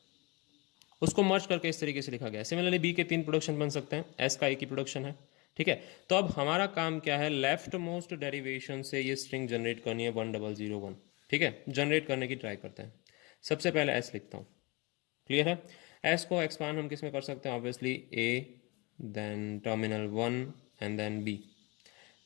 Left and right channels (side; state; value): right; quieter; 26.8 dB